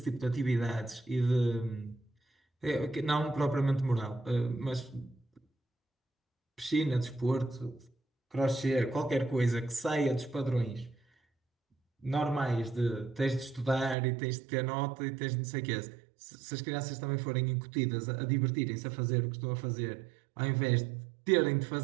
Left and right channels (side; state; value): left; drops out; at 14.0 s